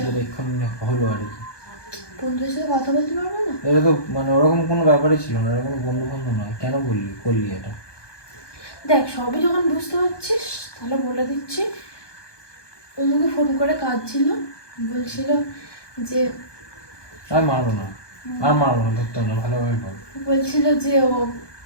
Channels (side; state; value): right; late; 1.2 ms